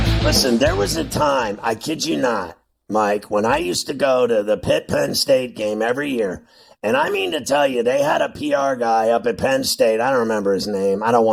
Listen, there was a time, I kid you not, Mike, when I used to go to the Pitt-Penn State game every year, and I mean to tell you, they had a PR guy up at Penn State. I don't remember his name. I don't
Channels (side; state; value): both; identical; correlation 1.00